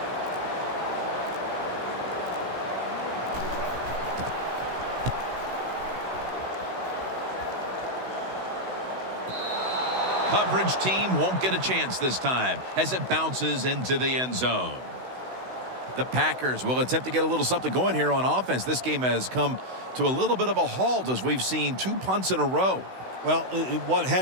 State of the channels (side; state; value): left; late; 16 ms